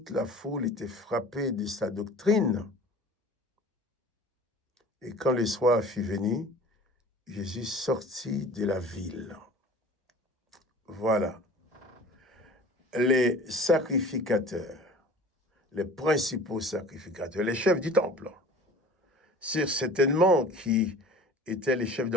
la foule était frappée de sa doctrine. Et quand le soir fut venu, Jésus sortit de la ville. Voilà. Les sacrificateurs, les principaux sacrificateurs, les chefs du temple, c'est certainement qui étaient les chefs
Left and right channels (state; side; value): normal; both; correlation 0.43